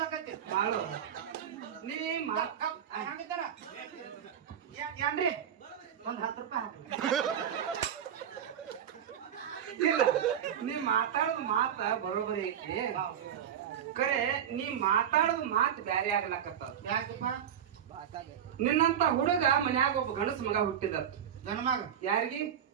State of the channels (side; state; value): left; quieter; 9.2 dB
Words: ಮಾಡು ನೀ ಹಂಗಿದ್ದಾರ ಏನ್ರಿ ಒಂದ್ 10 ರೂಪಾಯಿ ಇಲ್ಲ ನೀ ಮಾತಾಡೋದು ಮಾತ ಬರೋಬರಿ ಐತಿ ಕರೆ ನೀ ಮಾತಾಡೋದು ಮಾತು ಬ್ಯಾರೆ ಆಗ್ಲಕತ್ತಾವ ಯಾಕಪ್ಪ ನಿನ್ನಂತ ಹುಡುಗ ಮನ್ಯಾಗ ಒಬ್ಬ ಗಣಸ ಮಗ ಹುಟ್ಟಿದ ಗಂಡ ಮಗ ಯಾರಿಗಿ